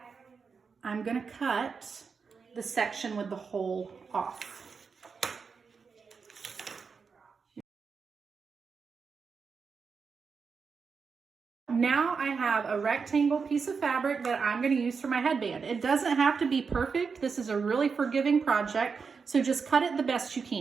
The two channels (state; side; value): quieter; left; 5.4 dB